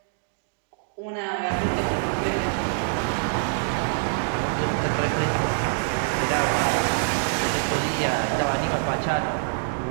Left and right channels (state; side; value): silent; left; digital silence